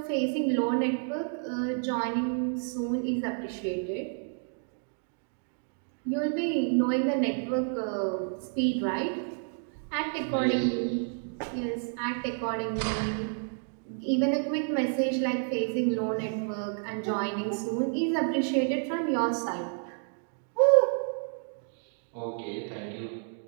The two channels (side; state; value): left; silent; 58 dB below the other